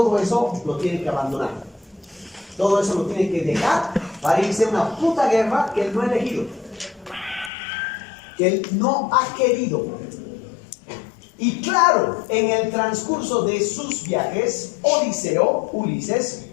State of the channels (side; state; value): right; drops out; at 7.5 s